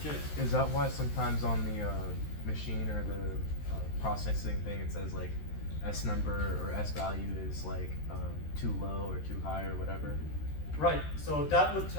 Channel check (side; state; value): right; late; 13 ms